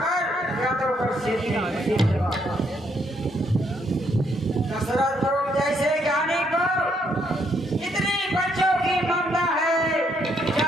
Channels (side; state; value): both; normal; correlation 0.72